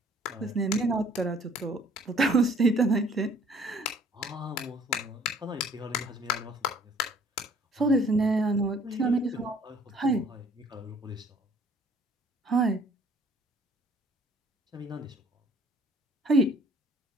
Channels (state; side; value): normal; both; correlation 0.57